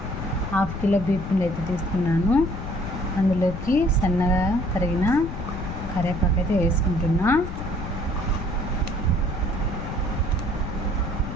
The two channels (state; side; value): noise; left; rumble, 6 dB below the sound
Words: 1/2 కిలో బియ్యం పిండి అయితే తీసుకున్నాను. అందులోకి సన్నగా తరిగిన కరివేపాకు అయితే వేసుకుంటున్నా.